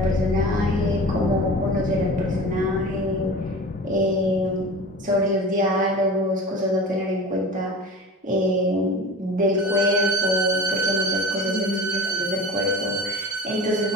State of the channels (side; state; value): both; normal; correlation 0.35